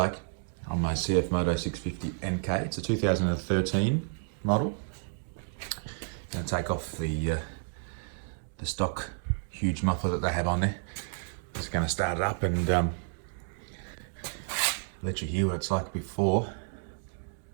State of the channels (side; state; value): left; silent; digital silence